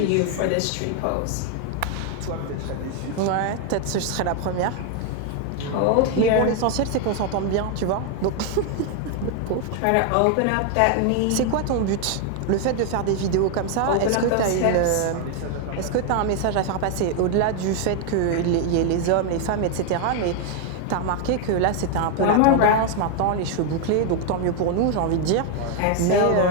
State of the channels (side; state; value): both; different; correlation 0.01